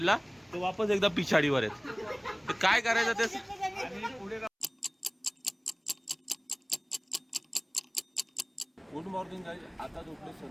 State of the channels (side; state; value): both; identical; correlation 1.00